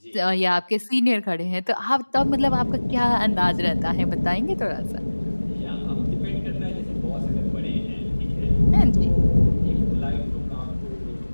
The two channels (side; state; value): both; inverted; correlation -1.00